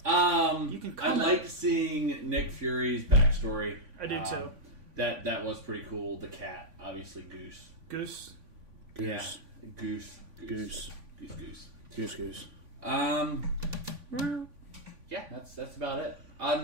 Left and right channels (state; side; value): late; left; 3.5 ms